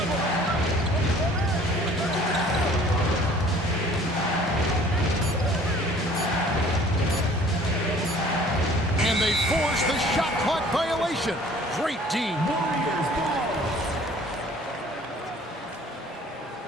And they force the shot clock violation. Great D.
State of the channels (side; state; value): both; normal; correlation 0.52